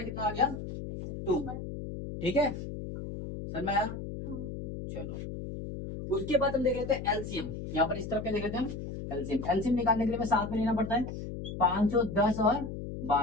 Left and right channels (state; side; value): noise; left; hum, 7 dB below the sound